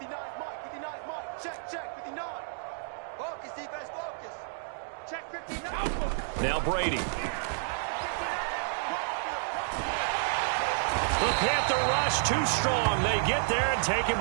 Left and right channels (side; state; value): left; silent; digital silence